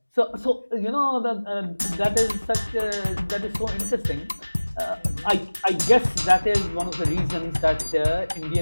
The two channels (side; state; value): both; inverted; correlation -1.00